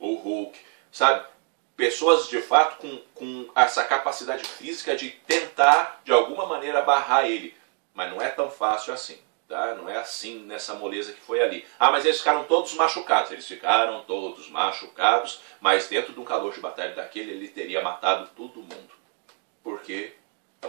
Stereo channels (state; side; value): quieter; left; 36.5 dB